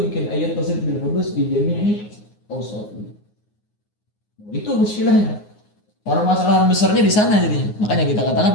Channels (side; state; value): right; late; 9.6 ms